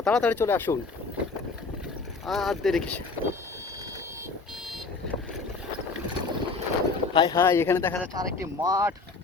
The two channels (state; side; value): quieter; right; 4.1 dB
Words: তাড়াতাড়ি চলে আসুন, আর দেরি কিসে। হাই হাই, এখানে দেখা যাচ্ছে আরেকটি